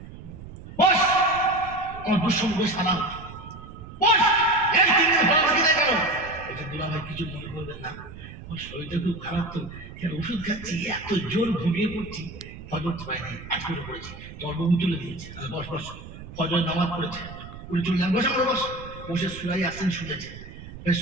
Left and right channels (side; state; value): right; noise; rumble, 14 dB below the sound